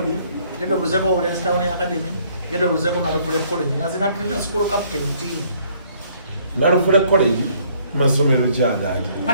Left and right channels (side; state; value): both; inverted; correlation -0.63